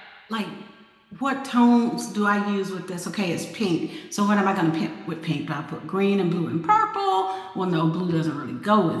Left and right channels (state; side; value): identical; both; correlation 1.00